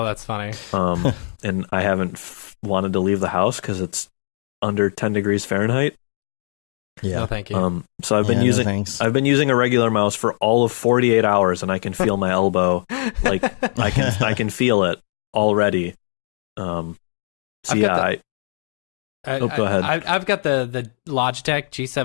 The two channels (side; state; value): right; silent; 63 dB below the other